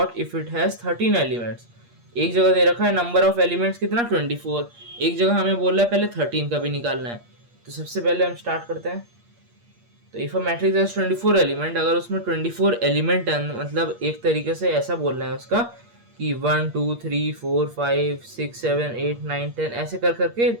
if it has 13 elements. एक जगह दे रखा है नंबर ऑफ एलिमेंट्स कितना 24, एक जगह हमें बोल रहा है पहले 13 का भी निकालना है। तो सबसे पहले हम स्टार्ट करते हैं। तो if a matrix has 24 element, अगर उसमें 24 एलिमेंट है, मतलब एक तरीके से ऐसा बोलना है उसका कि 1 2 3 4 5 6 7 8 9 10 ऐसे कर करके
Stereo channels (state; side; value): late; left; 8.5 ms